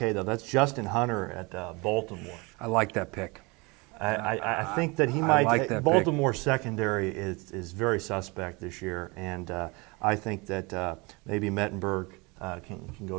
though. That's Justin Hunter at Baltimore. I like that pick. I think that he might. like that Baltimore's secondary is very suspect this year, and I think that maybe Mettenberg can go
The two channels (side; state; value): left; quieter; 26.8 dB